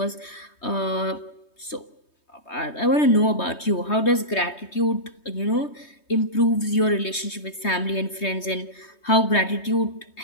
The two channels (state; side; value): late; right; 3.2 ms